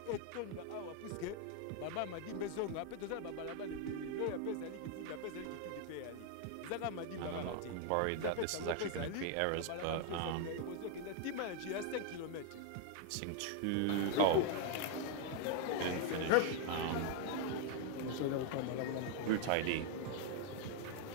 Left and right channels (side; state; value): both; different; correlation 0.00